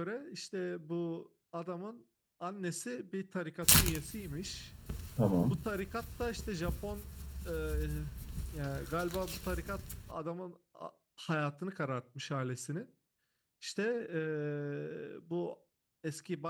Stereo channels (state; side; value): identical; both; correlation 1.00